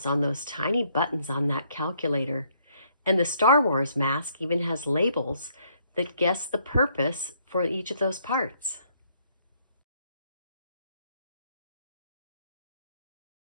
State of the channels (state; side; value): inverted; both; correlation -0.69